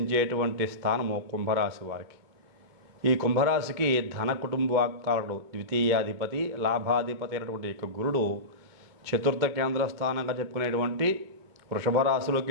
స్థానము కుంభరాశి వారికి. ఈ కుంభరాశికి ధన కుటుంబాకారుడు, ద్వితీయాధిపతి, లాభాధిపతి అయినటువంటి యొక్క గురుడు చతుర్థ కేంద్ర స్థానంగా చెప్పుకునేటువంటి వృషభ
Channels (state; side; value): late; left; 2.2 ms